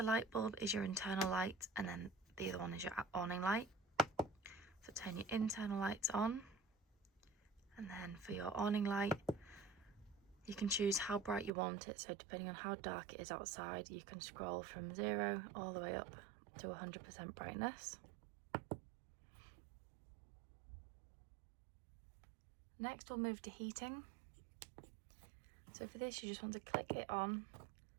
light bulb is your internal light, and then the other one is your awning light. So turn your internal lights on. And then for your awning light, you can choose how bright you want it. So depending on how dark it is outside, you can scroll from 0 all the way up to 100% brightness. Next we'll move to heating. So for this you just want to click it on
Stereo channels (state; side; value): drops out; left; at 11.5 s